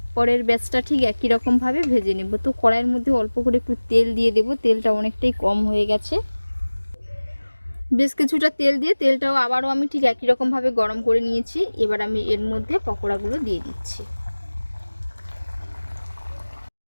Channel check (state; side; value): inverted; both; correlation -1.00